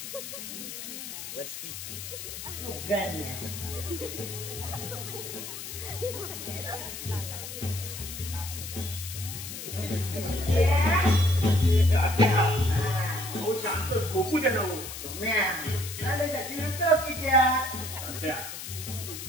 शांत झोपू दे ना.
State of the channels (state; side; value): noise; left; hiss, 9 dB below the sound